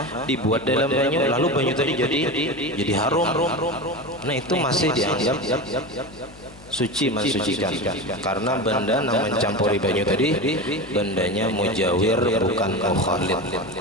dibuat dalam banyu, lalu banyu tadi jadi harum. Nah itu masih dianggap suci mensucikan, karena benda yang mencampuri banyu tadi bendanya mujawir bukan mukhalid.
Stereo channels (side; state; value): left; noise; hum, 22 dB below the sound